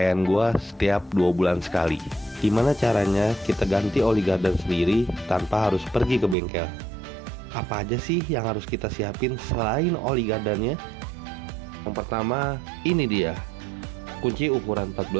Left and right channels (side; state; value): left; drops out; at 6.4 s